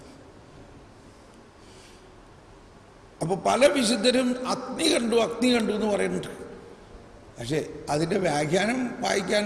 അപ്പോൾ പല വിശുദ്ധരും അഗ്നി കണ്ടു എന്ന് പറയുന്നുണ്ട്. പക്ഷേ അതിൻ്റെ വ്യാഖ്യാനം വായിക്കാൻ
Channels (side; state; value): both; identical; correlation 1.00